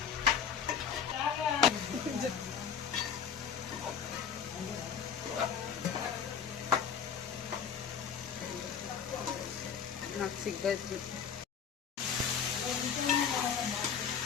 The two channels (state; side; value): quieter; right; 7.4 dB